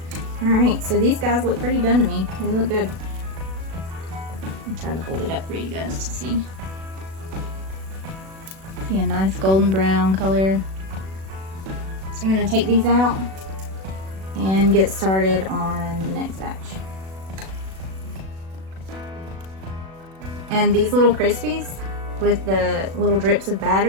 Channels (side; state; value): left; late; 37 ms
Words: Alright, so these guys look pretty done to me. They look good. I'm trying to hold it up for you guys to see. See a nice golden brown color. So I'm going to take these out and get started on the next batch. And these little Crispies with the little drips of